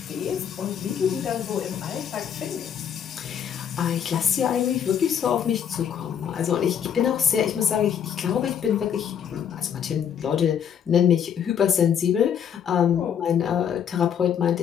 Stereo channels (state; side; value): quieter; right; 8.5 dB